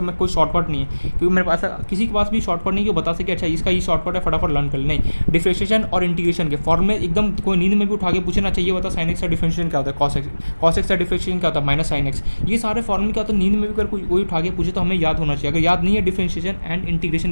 मैं कोई शॉर्टकट नहीं है, क्योंकि मेरे पास किसी के पास भी शॉर्टकट नहीं कि वो बता सके अच्छा इसका ये शॉर्टकट है फटाफट लर्न कर ले। नहीं, डिफरेंशिएशन और इंटीग्रेशन के फॉर्मूले एकदम कोई नींद में भी उठा के पूछना चाहिए, बता साइन एक्स का डिफरेंशिएशन क्या होता है, कॉस एक्स का डिफरेंशिएशन क्या होता है माइनस साइन एक्स, ये सारे फॉर्मूले क्या होता है नींद में भी अगर कोई उठा के पूछे तो हमें याद होना चाहिए। अगर याद नहीं है डिफरेंशिएशन एंड इंटीग्रेशन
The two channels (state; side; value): inverted; both; correlation -1.00